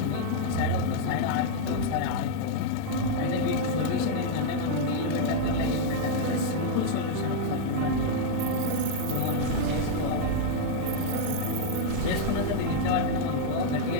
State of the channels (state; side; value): different; both; correlation 0.00